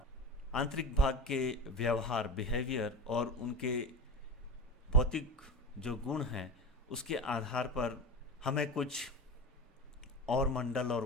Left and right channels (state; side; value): normal; both; correlation 0.26